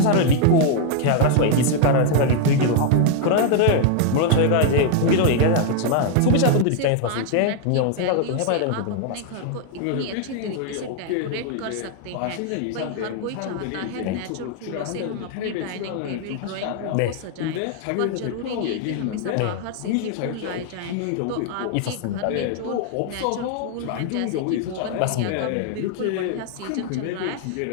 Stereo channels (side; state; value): both; different; correlation 0.00